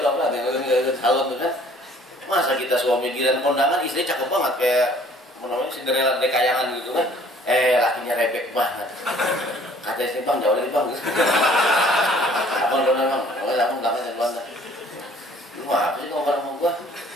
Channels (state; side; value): normal; both; correlation 0.56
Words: tuh apa? Salon tuh kan. Masa kita suami giliran kondangan istri cakep banget kayak namanya Cinderella dekayangan gitu kan. Lakinya rebek banget. Kata istri bang jauh lagi bang. Abang dong bang. Abang belakangnya belakang. Lu apa sih ngomong sama gua?